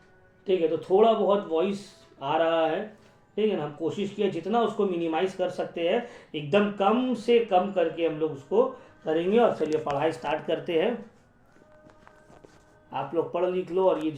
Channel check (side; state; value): both; identical; correlation 1.00